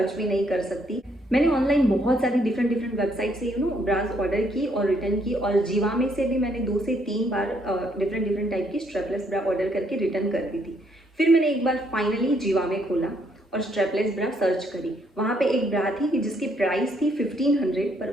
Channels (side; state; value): both; normal; correlation 0.70